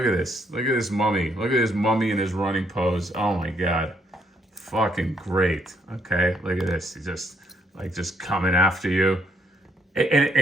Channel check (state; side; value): normal; both; correlation 0.72